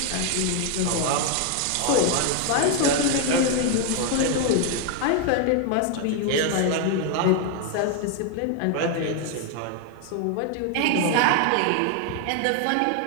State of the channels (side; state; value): both; different; correlation 0.01